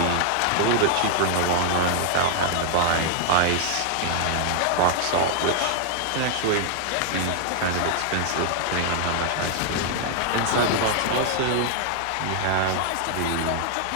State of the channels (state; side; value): different; both; correlation 0.00